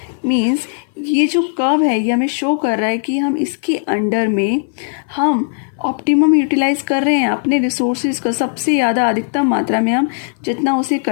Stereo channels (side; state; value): right; silent; 58 dB below the other